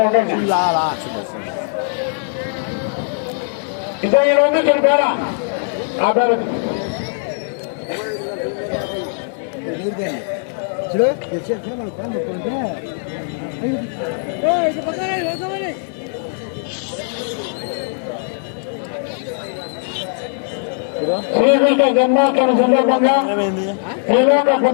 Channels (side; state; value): right; silent; digital silence